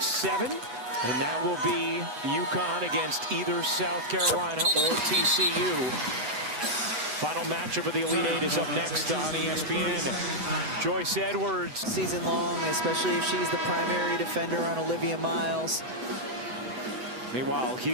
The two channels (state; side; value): late; left; 7.9 ms